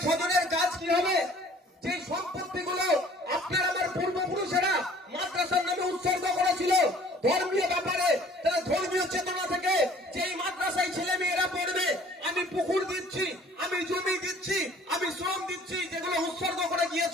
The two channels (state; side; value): normal; both; correlation 0.53